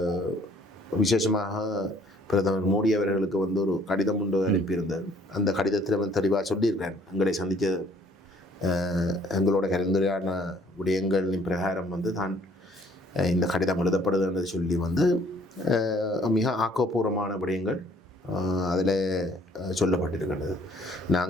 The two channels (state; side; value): normal; both; correlation 0.60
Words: விசேஷமாக பிரதமர் மோடி அவர்களுக்கு வந்து ஒரு கடிதம் ஒன்று அனுப்பியிருந்தார். அந்த கடிதத்தில் வந்து தெளிவாக சொல்லியிருக்கிறேன், எங்களை சந்தித்த எங்களோட கலந்துரையான விடயங்களின் பிரகாரம் வந்து தான் இந்த கடிதம் எழுதப்படுதுன்றது சொல்லி வந்து மிக ஆக்கப்பூர்வமான விடயங்கள் அதில் சொல்லப்பட்டிருக்கின்றது.